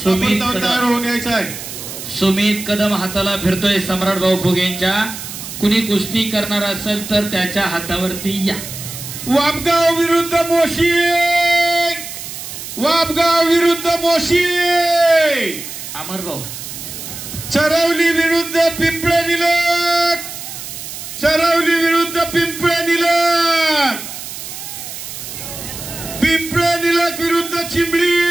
तयार होऊन यायचं आहे. सुमित कदम हाताला फिरतोय सम्राट भाऊ फुगेंच्या. कुणी कुस्ती करणार असेल तर त्याच्या हातावरती या. वापगाव विरुद्ध मोशी, वापगाव विरुद्ध मोशी, अमर भाऊ. चरवली विरुद्ध पिंपळे निलक, चरवली विरुद्ध पिंपळे निलक, पिंपळे निलक विरुद्ध चिंबळी.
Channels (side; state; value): right; noise; hiss, 10 dB below the sound